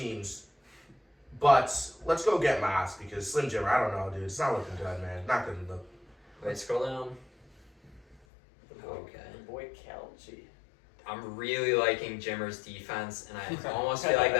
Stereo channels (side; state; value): right; drops out; at 8.2 s